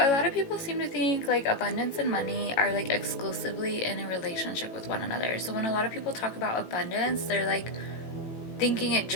lot of people seem to think like abundance and money are like exclusively in a relationship with one another. So when a lot of people talk about abundance, they're like thinking it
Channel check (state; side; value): late; right; 18 ms